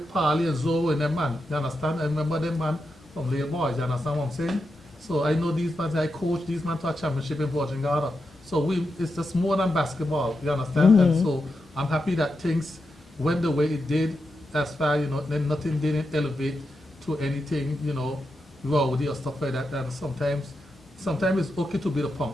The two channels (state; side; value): normal; both; correlation 0.87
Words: Parley and Zoe and them man. You understand? I remember them man from little boys. You understand what I'm saying? So I know these men. I coach these men to a championship in Virgin Garden. So it's just more than basketball. You understand? And so I'm happy that things went the way it did. As far, you know, then nothing didn't elevate to anything, you know, rowdy or stuff like that. And sometimes it's okay to be the punk.